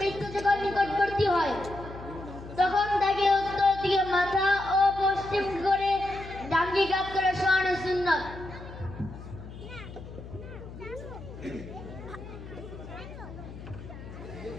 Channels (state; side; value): noise; left; hum, 13 dB below the sound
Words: যখন নিকটবর্তী হয় তখন তাকে উত্তর দিকে মাথা ও পশ্চিম করে ডাঙ্গি কাত করে শোয়ানো সুন্নাত।